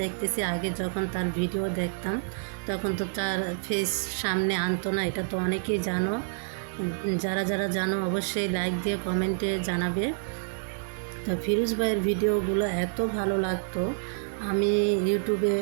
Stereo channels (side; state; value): left; silent; 59 dB below the other